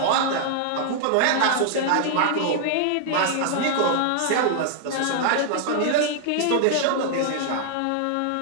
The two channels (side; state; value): both; different; correlation 0.00